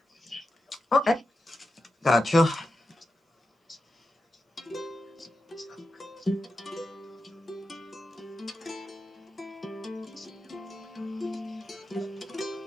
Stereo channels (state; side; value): normal; both; correlation 0.89